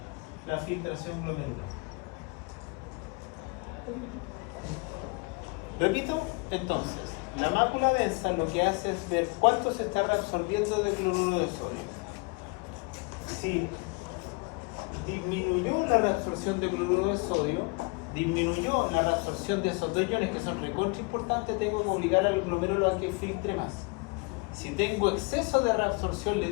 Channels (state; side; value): quieter; right; 29.9 dB